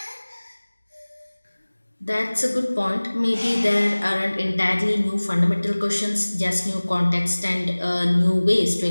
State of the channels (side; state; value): both; inverted; correlation -1.00